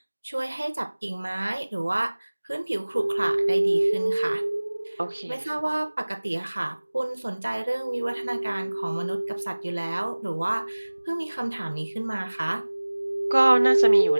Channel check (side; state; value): both; inverted; correlation -1.00